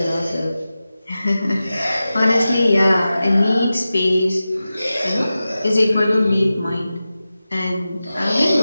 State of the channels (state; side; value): inverted; both; correlation -0.94